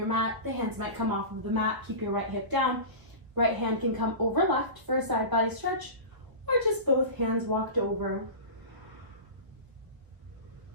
mat. The hands might come off of the mat. Keep your right hip down. Right hand can come over left for a side body stretch, or just both hands walked over.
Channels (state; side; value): late; left; 1.3 ms